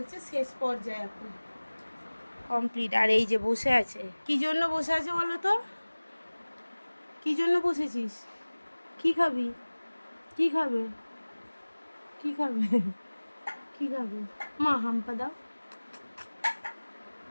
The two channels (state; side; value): inverted; both; correlation -1.00